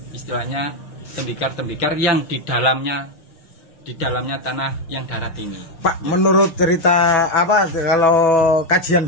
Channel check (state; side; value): late; right; 6.6 ms